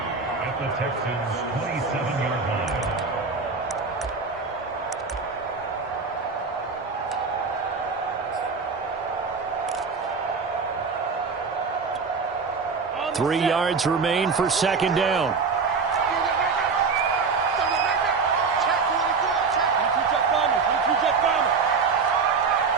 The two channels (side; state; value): left; quieter; 5.0 dB